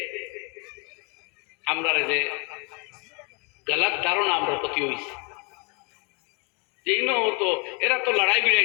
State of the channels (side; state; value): right; quieter; 32.9 dB